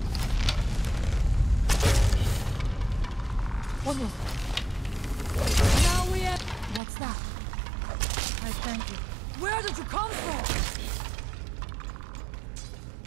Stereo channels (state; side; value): drops out; left; at 6.8 s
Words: What was that? Now we have... What's that? I thank you. Where did you come from?